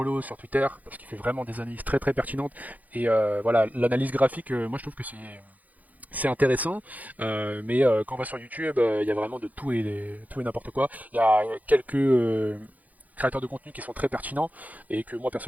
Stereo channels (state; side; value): late; left; 0.079 ms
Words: sur Twitter parce qu'il fait vraiment des analyses très très pertinentes. Et voilà, l'analyse graphique, moi je trouve que c'est intéressant, mais quand on va sur YouTube, il y a vraiment de tout et n'importe quoi. Il y a quelques créateurs de contenu qui sont très pertinents et que moi